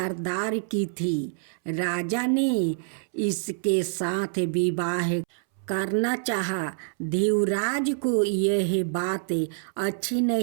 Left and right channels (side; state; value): left; silent; 61 dB below the other